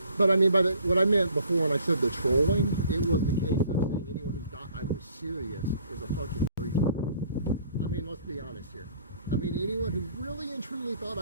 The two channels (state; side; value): inverted; both; correlation -0.58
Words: But I mean, what I meant before when I said the trolling, it was the case of saying anyone who thought I was serious is a fucking retard. I mean, let's be honest here. I mean, anyone who really and truly thought